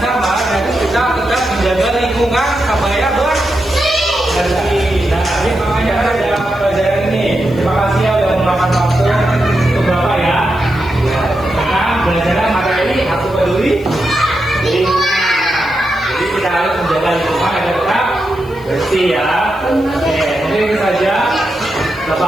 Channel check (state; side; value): noise; left; hiss, 27 dB below the sound